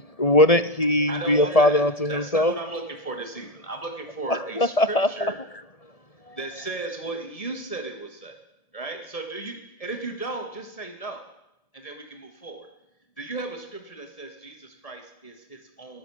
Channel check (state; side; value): late; right; 1.7 ms